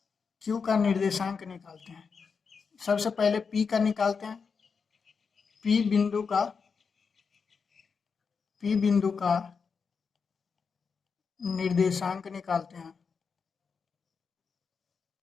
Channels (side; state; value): right; quieter; 5.6 dB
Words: Q का निर्देशांक निकालते हैं। सबसे पहले P का निकालते हैं, P बिंदु का निर्देशांक निकालते हैं